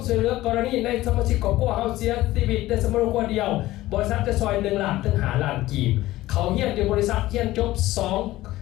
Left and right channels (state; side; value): quieter; right; 16.6 dB